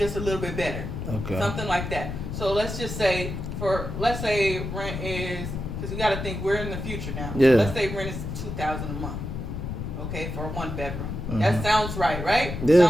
a little bit better. Okay. Something like that. So let's just say let's say rent is, because you got to think we're in the future now. Yeah. So let's say rent is $2,000 a month. Okay, for a 1-bedroom. That sounds right? Yeah.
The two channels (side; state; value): left; noise; rumble, 5 dB below the sound